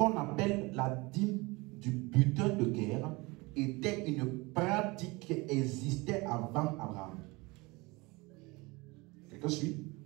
appelle la dîme du butin de guerre était une pratique qui existait avant Abraham. Quelqu'un suit?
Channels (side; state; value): left; quieter; 24.4 dB